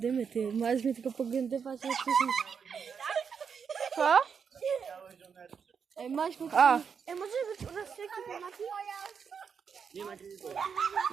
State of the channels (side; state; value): left; quieter; 6.5 dB